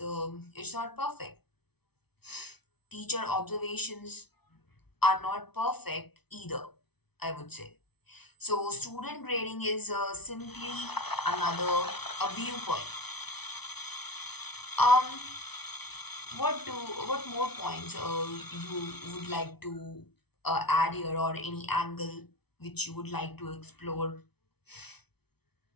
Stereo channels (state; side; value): late; right; 0.98 ms